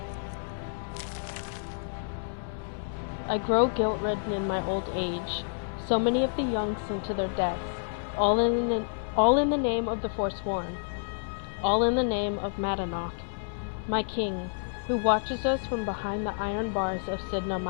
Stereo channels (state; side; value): silent; right; 58 dB below the other